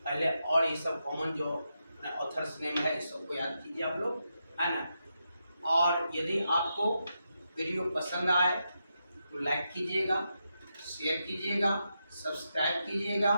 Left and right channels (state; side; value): inverted; both; correlation -0.85